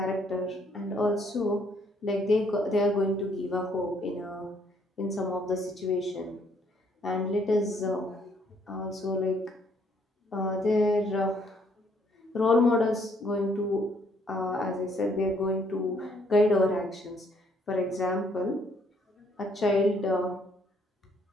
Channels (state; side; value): normal; both; correlation 0.67